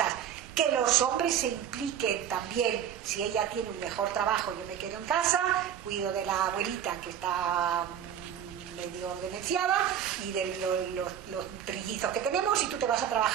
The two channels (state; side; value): quieter; left; 9.3 dB